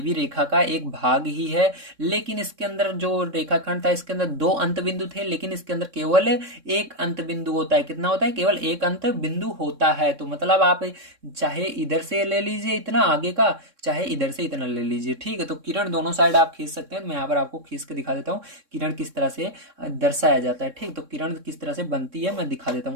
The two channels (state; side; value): late; left; 3.6 ms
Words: भी रेखा का एक भाग ही है। लेकिन इसके अंदर जो रेखाखंड था इसके अंदर दो अंत बिंदु थे, लेकिन इसके अंदर केवल एक अंत बिंदु होता है। कितना होता है, केवल एक अंत बिंदु होता है। तो मतलब आप चाहे इधर से ले लीजिए इतना आगे का, चाहे इधर से इतना ले लीजिए, ठीक है। तो किरण दोनों साइड आप खींच सकते हैं। मैं यहाँ पर आपको खींच के दिखा देता हूँ किरण किस तरह से दर्शाया जाता है, ठीक। तो किरण किस तरह से बनती है मैं दिखा देता